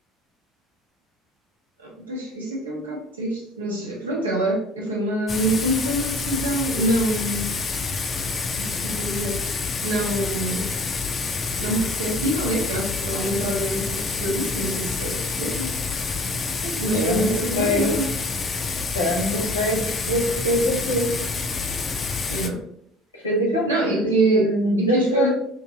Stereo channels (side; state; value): both; normal; correlation 0.46